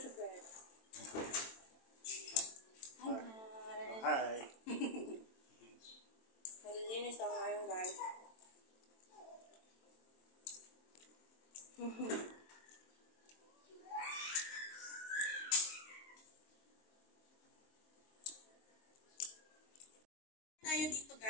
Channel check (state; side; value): late; right; 22 ms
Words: bed. Hi guys. Hi. Naglilinis ako ngayon guys. Tayo dito